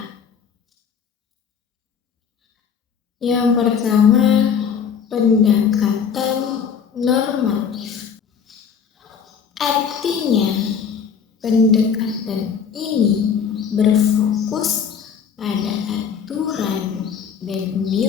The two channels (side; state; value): right; quieter; 6.9 dB